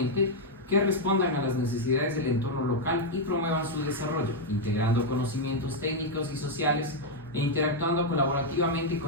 que respondan a las necesidades del entorno local y promuevan su desarrollo, integrando conocimientos técnicos y sociales e interactuando colaborativamente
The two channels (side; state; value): both; normal; correlation -0.01